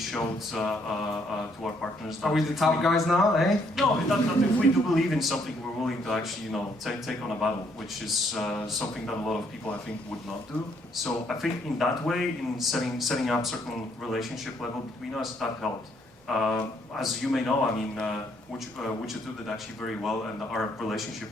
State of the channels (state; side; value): normal; both; correlation 0.69